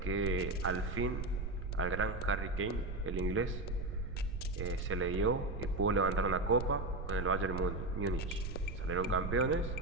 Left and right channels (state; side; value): noise; right; rumble, 5 dB below the sound